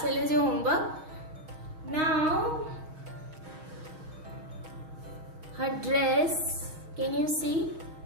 is your homework. Now, her dress, can you see?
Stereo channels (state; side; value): late; left; 6.3 ms